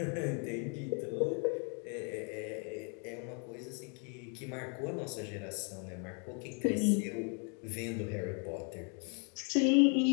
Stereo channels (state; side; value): quieter; right; 38.4 dB